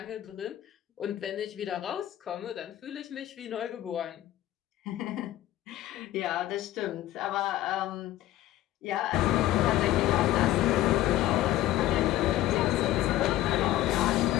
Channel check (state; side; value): quieter; right; 14.4 dB